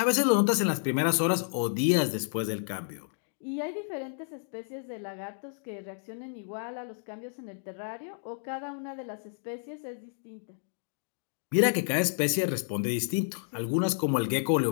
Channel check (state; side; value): silent; right; digital silence